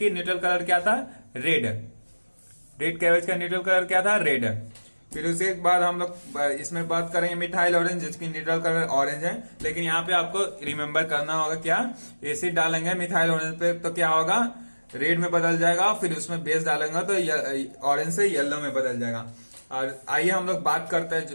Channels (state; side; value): inverted; both; correlation -1.00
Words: न्यूट्रल कलर क्या था? रेड कैबेज का न्यूट्रल कलर क्या था? रेड। फिर उसके बाद हम लोग इसमें बात करेंगे मिथाइल ऑरेंज, जिसकी न्यूट्रल कलर ऑरेंज है। लेकिन यहाँ पे आपको रिमेंबर करना होगा क्या? एसिड डालेंगे मिथाइल ऑरेंज पे तो क्या होगा? रेड में बदल जाएगा। फिर उसमें बेस डालेंगे तो ऑरेंज से येलो में बदल जाएगा। और आइए हम लोग बात करते